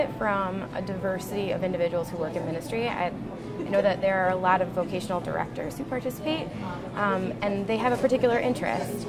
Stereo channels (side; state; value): both; identical; correlation 1.00